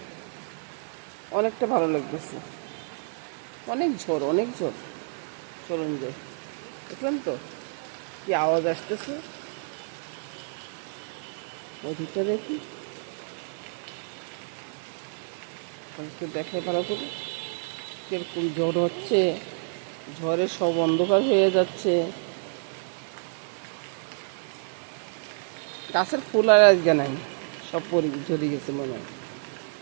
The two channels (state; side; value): silent; left; digital silence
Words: অনেকটা ভালো লাগতেছে। অনেক ঝড়। চলুন যাই। দেখলেন তো কি আওয়াজ আসতেছে, ওদিকটা দেখি, দেখাই ভালো করে কিরকম ঝড় হচ্ছে। ঝড়ে সব অন্ধকার হয়ে যাচ্ছে। গাছের ফুল আর আজকে নাই, সব ঝরে গেছে মনে হয়।